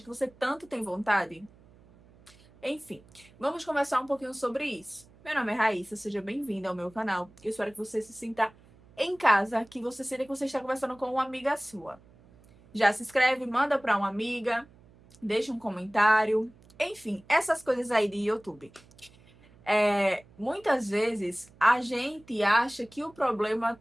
que você tanto tem vontade? Enfim, vamos conversar um pouquinho sobre isso. Meu nome é Raíssa, seja bem-vinda ao meu canal. Eu espero que você se sinta em casa, que você sinta que você está conversando com uma amiga sua. Já se inscreve, manda para uma amiga, deixa um comentário. Enfim, essas coisas aí de YouTube. Muitas vezes a gente acha que o problema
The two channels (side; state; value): right; noise; hum, 26 dB below the sound